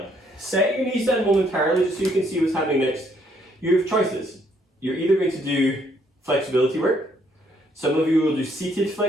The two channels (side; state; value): both; normal; correlation 0.68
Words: Set your knees down momentarily just so you can see what's happening next. You have choices. You're either going to do flexibility work. Some of you will do seated